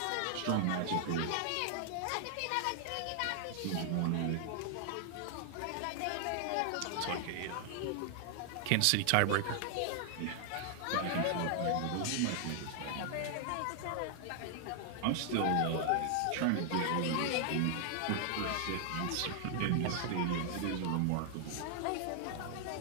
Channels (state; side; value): different; both; correlation 0.00